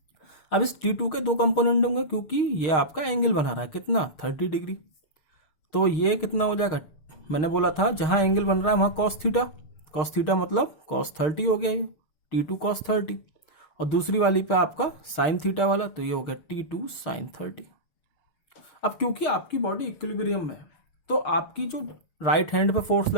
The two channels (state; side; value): late; right; 6.5 ms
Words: अब इस T2 के दो कंपोनेंट होंगे, क्योंकि ये आपका एंगल बना रहा है कितना 30 डिग्री, तो ये कितना हो जाएगा, मैंने बोला था जहां एंगल बन रहा है वहां cos थीटा मतलब cos 30 हो गया, ये T2 cos 30, और दूसरी वाली पे आपका sin थीटा वाला, तो ये हो गया T2 sin 30। अब क्योंकि आपकी बॉडी इक्विलिब्रियम में है, तो आपकी जो राइट हैंड पे फोर्स